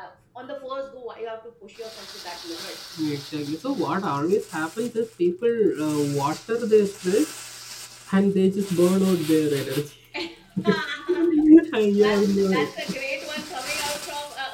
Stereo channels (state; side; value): identical; both; correlation 1.00